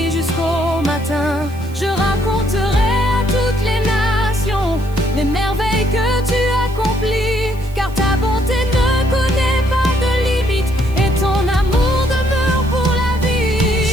jusqu'au matin. Je raconterai à toutes les nations les merveilles que tu accomplis, car ta bonté ne connaît pas de limite et ton amour demeure pour la vie.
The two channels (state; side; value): noise; right; hiss, 24 dB below the sound